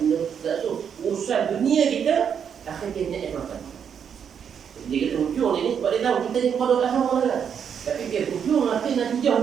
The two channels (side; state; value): left; quieter; 7.7 dB